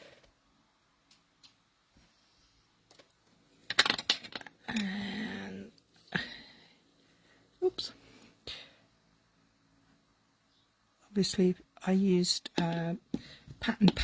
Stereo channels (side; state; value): both; identical; correlation 1.00